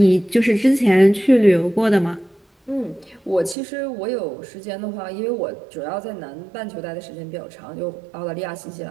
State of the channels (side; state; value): left; drops out; at 3.6 s